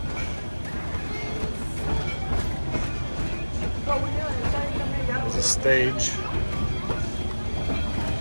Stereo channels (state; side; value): inverted; both; correlation -1.00